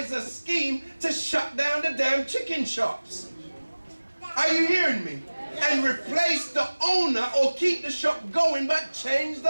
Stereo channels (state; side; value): inverted; both; correlation -1.00